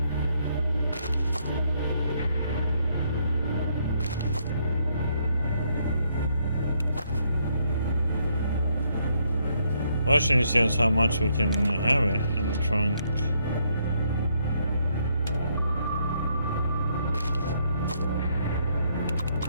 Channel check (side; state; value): both; inverted; correlation -0.73